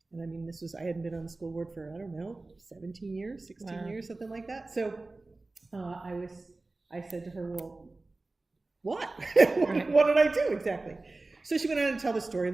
And I mean, I hadn't been on the school board for, I don't know, 17 years, 16 years, something like that. So I said to her, well, what? What did I do exactly? So she went on to tell the story.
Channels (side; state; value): left; quieter; 3.2 dB